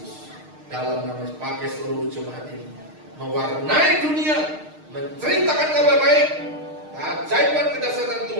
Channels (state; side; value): late; left; 6.5 ms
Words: dalam nama Yesus, pakai seluruh jemaat ini mewarnai dunia, menceritakan kabar baik, keajaiban kedahsyatan